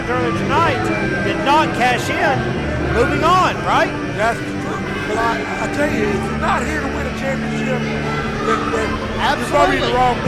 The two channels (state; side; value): identical; both; correlation 1.00